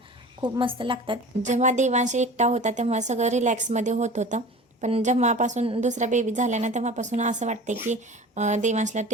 खूप मस्त लागतात. जेव्हा देवांशी एकटा होता तेव्हा सगळं रिलॅक्समध्ये होत होतं, पण जेव्हापासून दुसरा बेबी झाला ना तेव्हापासून असं वाटते की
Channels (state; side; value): normal; both; correlation 0.38